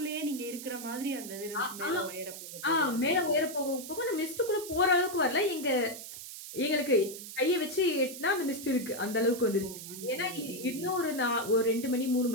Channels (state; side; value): noise; right; hiss, 11 dB below the sound